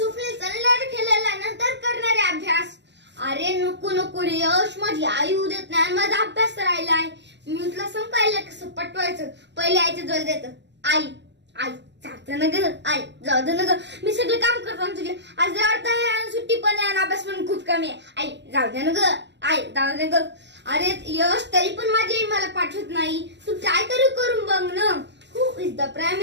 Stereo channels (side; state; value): left; late; 0.51 ms